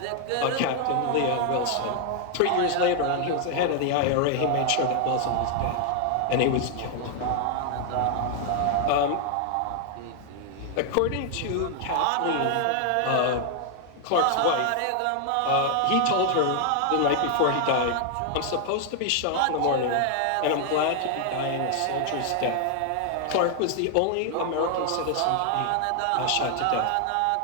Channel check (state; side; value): different; both; correlation 0.00